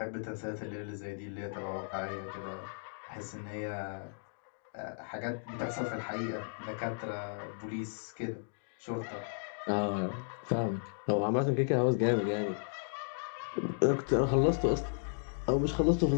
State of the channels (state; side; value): silent; right; digital silence